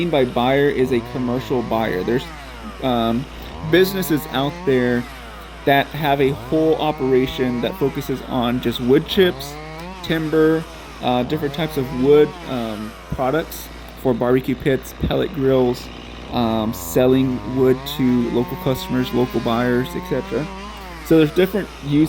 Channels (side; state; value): both; identical; correlation 1.00